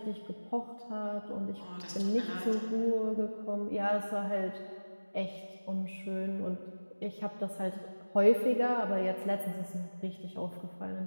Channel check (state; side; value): inverted; both; correlation -1.00